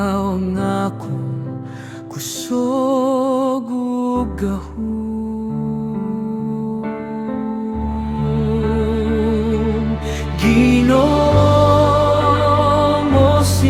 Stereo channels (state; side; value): identical; both; correlation 1.00